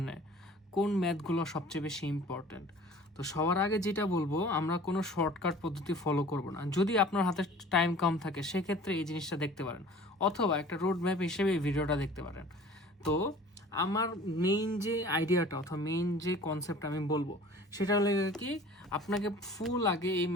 কোন ম্যাথগুলো সবচেয়ে বেশি ইম্পর্ট্যান্ট। তো সবার আগে যেটা বলবো, আমরা কোনো শর্টকাট পদ্ধতি ফলো করব না। যদি আপনার হাতে টাইম কম থাকে সেক্ষেত্রে এই জিনিসটা দেখতে পারেন, অথবা একটা রোড ম্যাপ হিসেবে এই ভিডিওটা দেখতে পারেন। তো আমার মেইন যে আইডিয়াটা অথবা মেইন যে কনসেপ্ট আমি বলবো সেটা হলো কি, আপনাকে ফুল আগে এই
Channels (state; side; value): normal; both; correlation 0.46